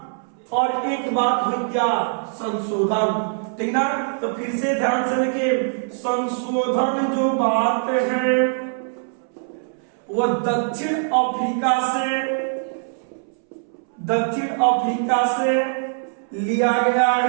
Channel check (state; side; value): silent; left; 64 dB below the other